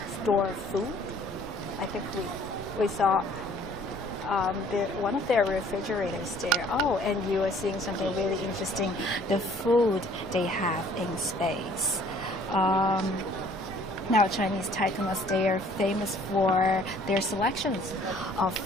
store food. I think we saw one of their refrigerators there. Oh, and you are seeing something really interesting, the food they have in space. Now, Chinese taikonauts, they are famous for their selections of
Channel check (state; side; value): normal; both; correlation 0.56